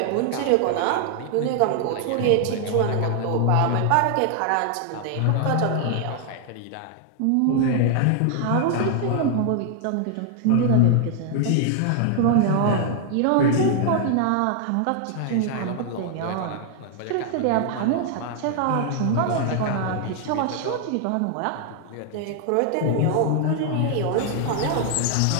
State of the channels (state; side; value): different; both; correlation 0.00